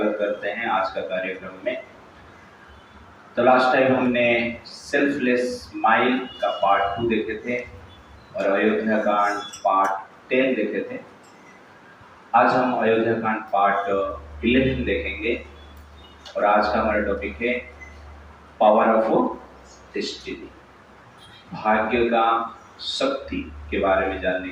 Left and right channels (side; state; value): both; identical; correlation 1.00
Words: करते हैं आज का कार्यक्रम में। तो लास्ट टाइम हमने सेल्फलेस माइंड का पार्ट 2 देखे थे और अयोध्या कांड पार्ट 10 देखे थे। आज हम अयोध्या कांड पार्ट 11 देखेंगे और आज का हमारा टॉपिक है पावर ऑफ डेस्टिनी, भाग्य का शक्ति के बारे में जानने